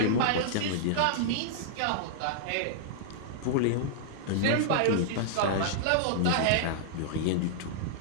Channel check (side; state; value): both; different; correlation -0.01